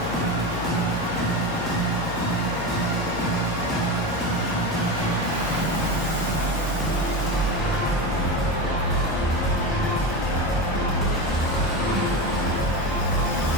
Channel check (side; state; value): both; normal; correlation 0.20